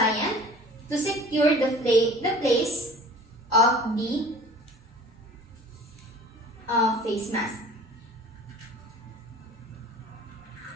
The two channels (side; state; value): both; normal; correlation 0.45